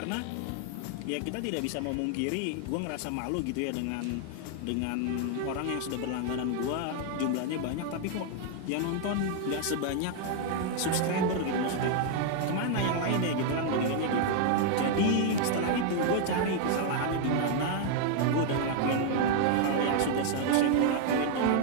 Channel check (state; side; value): different; both; correlation 0.00